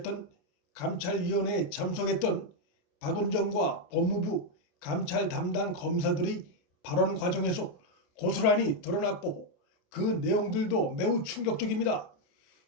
감찰위원회에 참석했던 박은정과 법무부 감찰 담당 검사들의 발언 과정에서 고스란히 드러났고, 그 내용들도 매우 충격적입니다.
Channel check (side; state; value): right; late; 28 ms